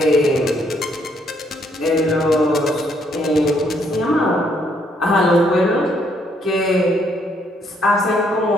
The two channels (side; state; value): both; normal; correlation 0.70